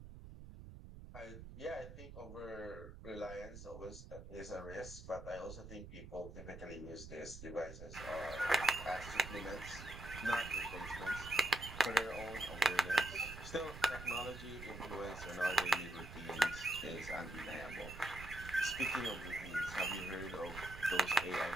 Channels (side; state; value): right; noise; rumble, 13 dB below the sound